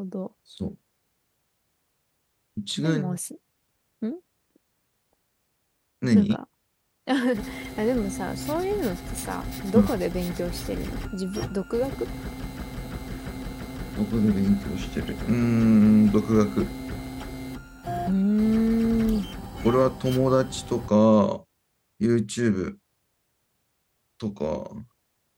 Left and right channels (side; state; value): both; identical; correlation 1.00